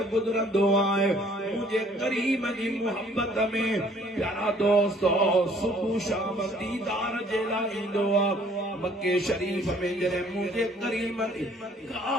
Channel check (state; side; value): normal; both; correlation 0.58